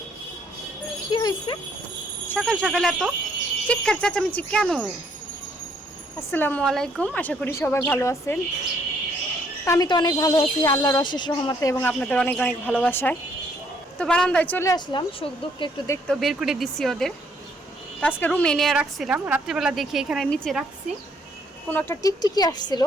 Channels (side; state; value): both; normal; correlation 0.67